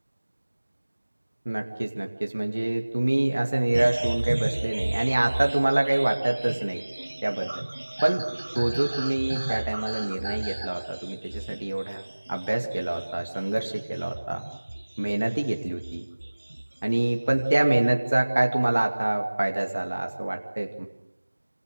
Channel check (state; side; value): inverted; both; correlation -1.00